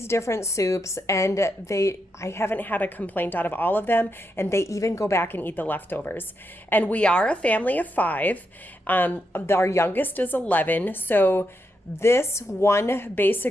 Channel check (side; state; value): both; normal; correlation 0.83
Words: different soups, and I haven't had a complaint out of all of them, and they even go back and eat the leftovers. And we are a family of 5. Our youngest is 11, so this one